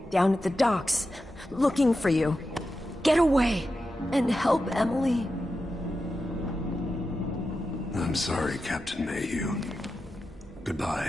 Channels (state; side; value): normal; both; correlation 0.90